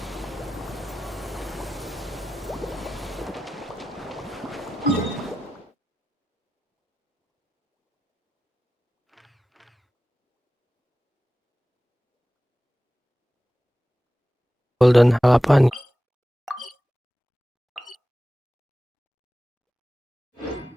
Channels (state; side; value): normal; both; correlation 0.94